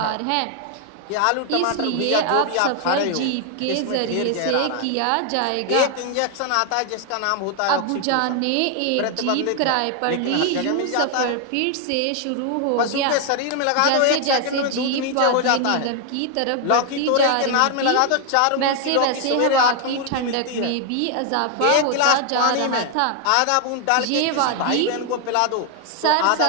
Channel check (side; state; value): both; different; correlation 0.00